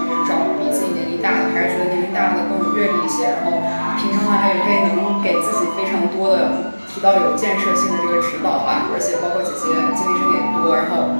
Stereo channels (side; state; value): both; inverted; correlation -1.00